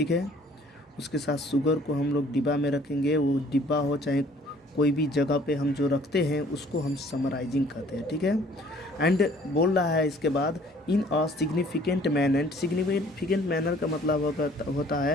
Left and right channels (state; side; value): normal; both; correlation 0.56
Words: है। उसके साथ शुगर को हम लोग डिब्बा में रखेंगे, वो डिब्बा हो चाहे कोई भी जगह पे हम जो रखते हैं उसको हम समराइजिंग कहते हैं, ठीक है। एंड बोल रहा है इसके बाद in a significant manner. Significant manner का मतलब होता